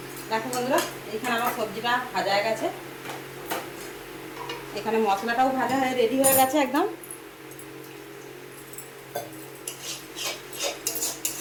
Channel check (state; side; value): identical; both; correlation 1.00